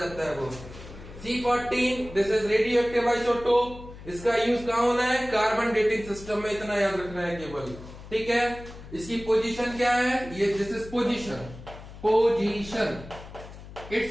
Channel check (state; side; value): noise; left; hum, 15 dB below the sound